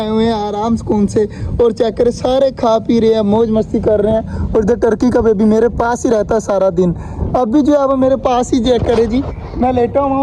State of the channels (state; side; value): identical; both; correlation 1.00